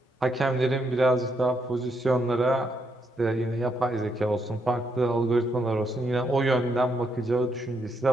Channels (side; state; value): both; normal; correlation 0.77